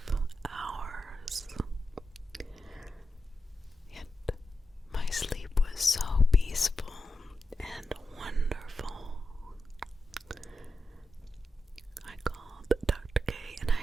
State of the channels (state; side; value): normal; both; correlation 0.89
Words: hours. Yet my sleep was so peaceful and wonderful. I called Dr. K and